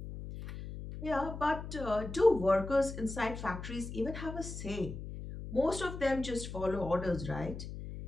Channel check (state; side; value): noise; left; hum, 9 dB below the sound